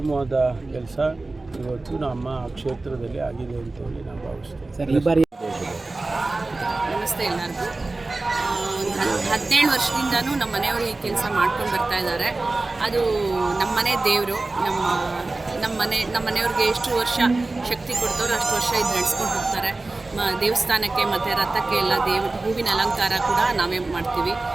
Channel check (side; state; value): left; quieter; 3.2 dB